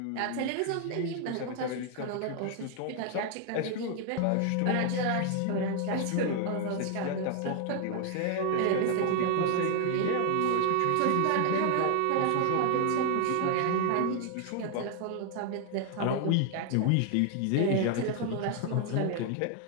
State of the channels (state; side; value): different; both; correlation 0.00